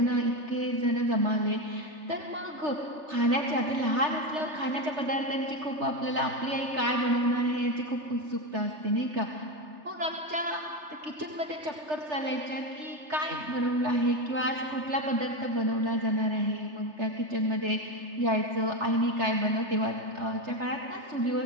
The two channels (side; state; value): left; late; 3.3 ms